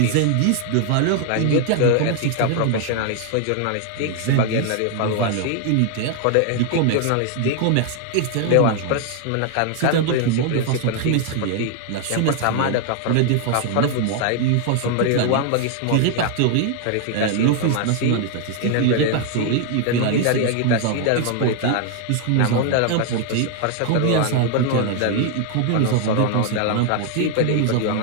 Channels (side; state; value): both; different; correlation 0.00